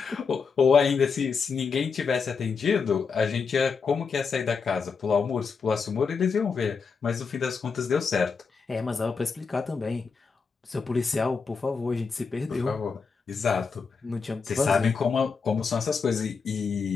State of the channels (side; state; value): right; quieter; 5.4 dB